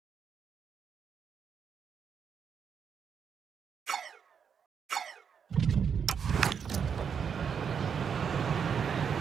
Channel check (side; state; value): left; quieter; 7.0 dB